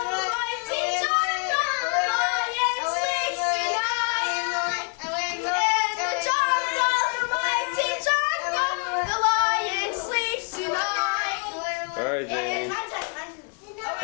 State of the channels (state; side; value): quieter; right; 38.1 dB